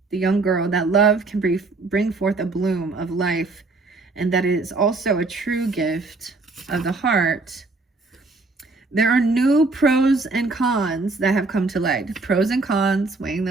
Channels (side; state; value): left; quieter; 3.5 dB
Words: the young girl, that love can bring forth a bloom of life, and that it is also a true gift of the heart. There are new pros and cons that have come to light. Pros and cons, weighing